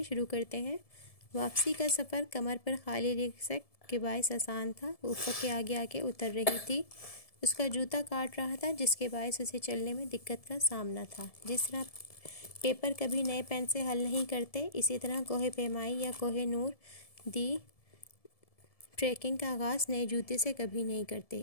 शुरू करते हैं। वापसी का सफ़र कमर पर खाली रिक्शक के बायस आसान था। ऊपर के आगे आके उतर रही थी। उसका जूता काट रहा था जिसके बायस उसे चलने में दिक्कत का सामना था। जिस तरह पेपर कभी नए पेन से हल नहीं करते, इसी तरह कोहे पैमाई या कोहे नूर दी ट्रैकिंग का आगाज़ नए जूते से कभी नहीं करते।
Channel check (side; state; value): right; late; 1.7 ms